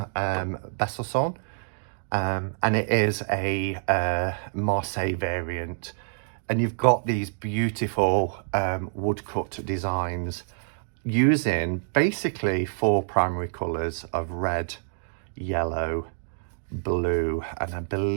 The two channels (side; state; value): left; silent; digital silence